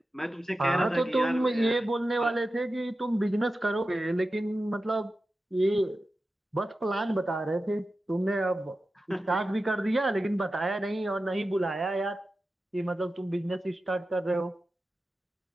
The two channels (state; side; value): normal; both; correlation 0.93